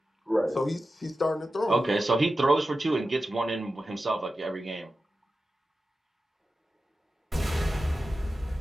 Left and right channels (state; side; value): normal; both; correlation 0.93